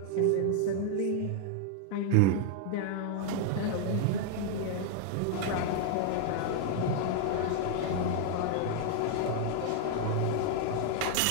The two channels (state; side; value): different; both; correlation 0.00